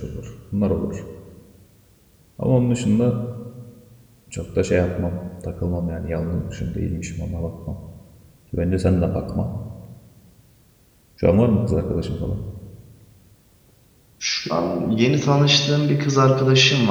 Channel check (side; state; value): both; identical; correlation 1.00